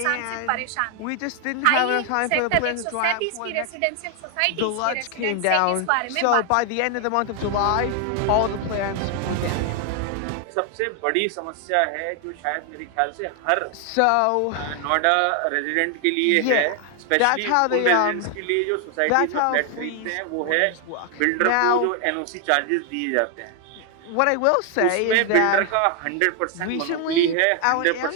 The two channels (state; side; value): different; both; correlation 0.00